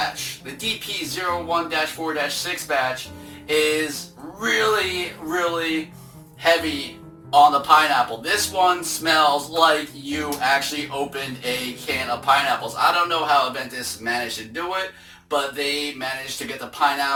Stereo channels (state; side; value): identical; both; correlation 1.00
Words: The DP01-4-6 batch is really heavy on the pineapple. This one smells like you actually opened a can of pineapples. I don't know how Aventus managed to do it, but they managed to get the